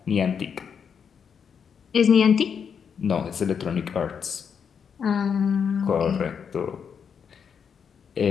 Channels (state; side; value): quieter; right; 6.9 dB